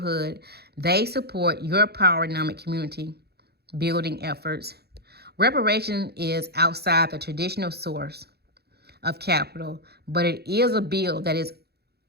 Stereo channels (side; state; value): left; late; 0.47 ms